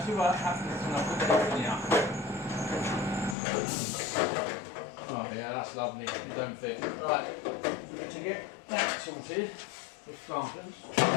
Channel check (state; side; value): drops out; right; at 3.4 s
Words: see what happens when I put everything up. Oh yeah, that's lovely. You don't fit. Right, to get that sorted with clampers.